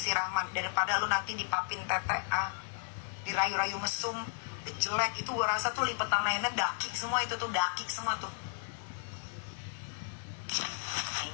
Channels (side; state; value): right; silent; digital silence